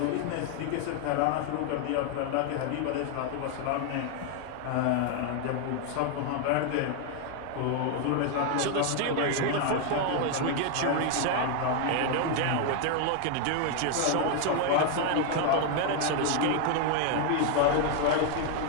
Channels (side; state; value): both; different; correlation 0.00